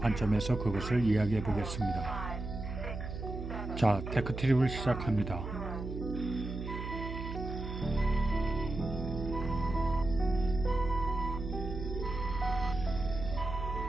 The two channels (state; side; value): noise; right; hum, 7 dB below the sound